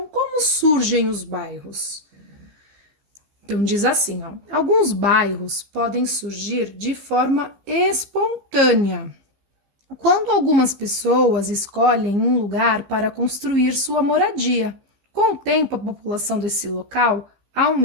como surgem os bairros? Então, diz assim, ó, alguns bairros podem surgir de forma espontânea, quando algumas pessoas escolhem um lugar para construir sua moradia. Com o tempo, a população desse local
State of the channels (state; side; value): late; left; 15 ms